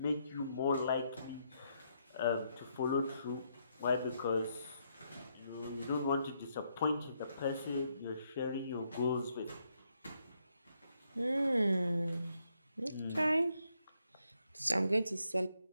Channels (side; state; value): both; inverted; correlation -0.77